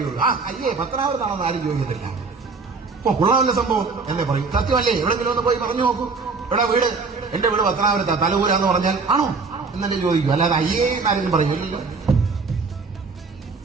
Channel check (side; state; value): left; quieter; 4.4 dB